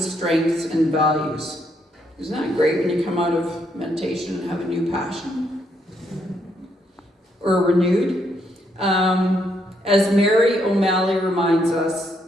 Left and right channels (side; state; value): both; normal; correlation 0.75